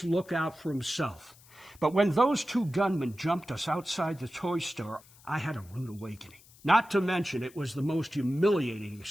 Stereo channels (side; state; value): left; noise; hiss, 25 dB below the sound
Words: look out for himself. But when those two gunmen jumped us outside the toy store, I had a rude awakening. Not to mention, it was the most humiliating